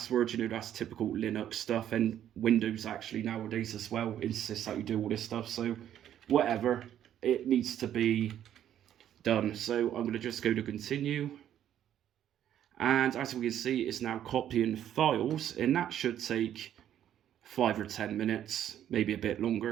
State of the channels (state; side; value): quieter; left; 10.7 dB